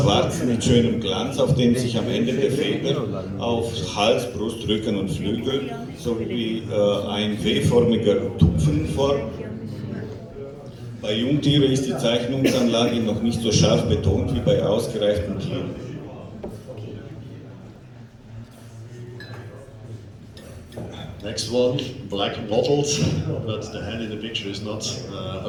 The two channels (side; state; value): both; identical; correlation 1.00